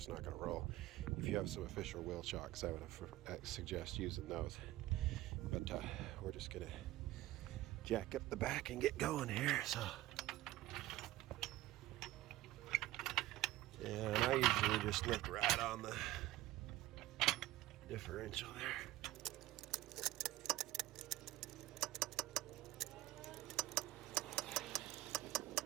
not going to roll. If you have some official wheel shocks, I would suggest using those. But we're just going to jack up the back and get going here. And I usually just lift right on the differential there.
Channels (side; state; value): left; quieter; 16.3 dB